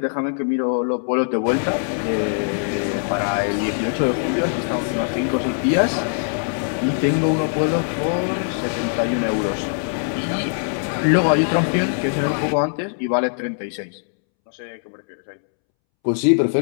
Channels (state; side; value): silent; right; 65 dB below the other